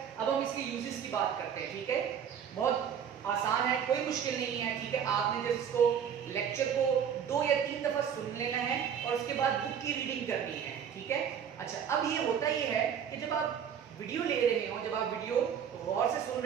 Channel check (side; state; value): left; quieter; 8.2 dB